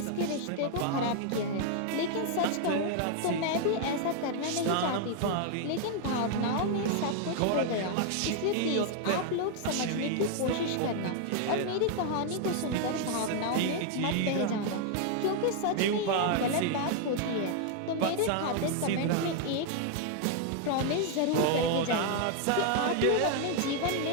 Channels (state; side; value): different; both; correlation 0.00